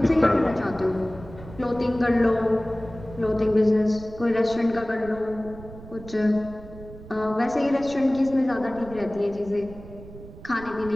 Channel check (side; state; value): right; noise; rumble, 16 dB below the sound